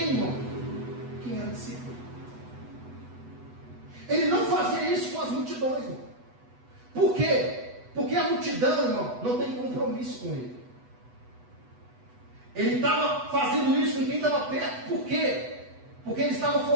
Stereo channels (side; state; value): left; late; 8.1 ms